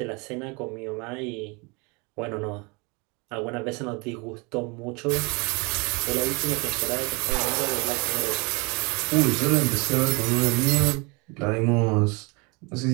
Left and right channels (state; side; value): quieter; left; 29.0 dB